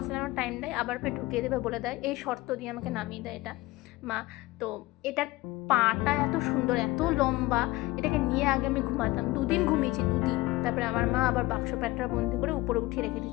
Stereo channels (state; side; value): quieter; right; 19.8 dB